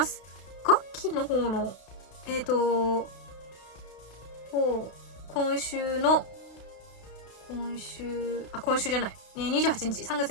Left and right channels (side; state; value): right; late; 32 ms